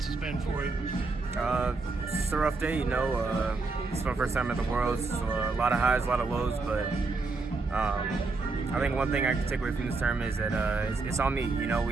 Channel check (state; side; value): quieter; left; 3.8 dB